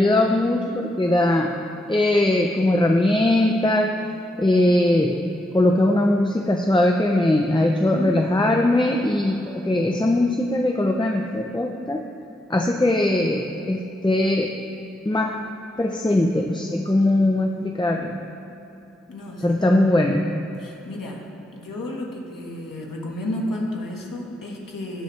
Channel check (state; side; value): normal; both; correlation 0.82